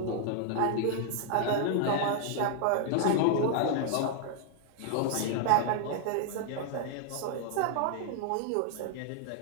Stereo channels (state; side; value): different; both; correlation 0.00